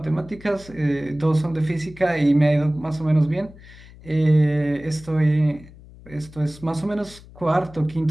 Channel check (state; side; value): noise; left; hum, 20 dB below the sound